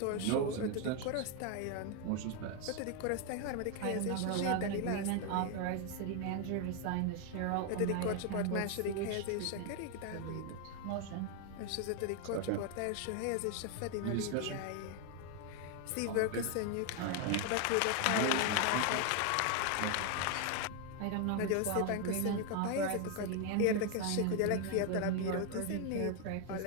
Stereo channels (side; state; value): both; different; correlation 0.01